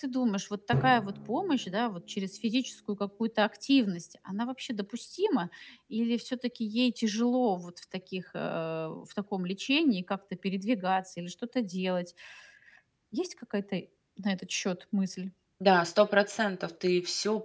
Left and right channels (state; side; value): identical; both; correlation 1.00